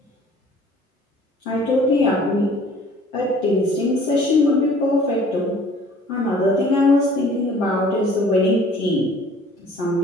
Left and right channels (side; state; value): both; normal; correlation 0.52